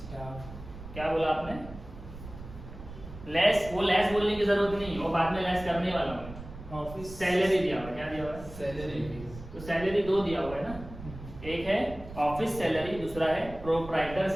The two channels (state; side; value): noise; right; rumble, 14 dB below the sound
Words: क्या बोला आपने, लेस. वो लेस बोलने की जरूरत नहीं, वो बाद में लेस करने वाला हूँ. ऑफिस सैलरी दिया हुआ है, क्या दिया हुआ है, सैलरी. तो सैलरी 2 दिया हुआ है ना. एक है ऑफिस सैलरी, दूसरा है प्रोप्राइटर